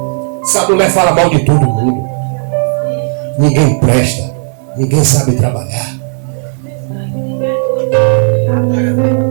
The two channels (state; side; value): silent; left; 56 dB below the other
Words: Essa mulher fala mal de todo mundo. Ninguém presta. Ninguém sabe trabalhar.